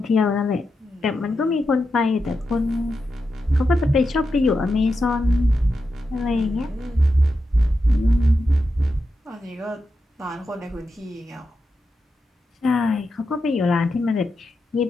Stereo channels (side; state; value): both; normal; correlation 0.88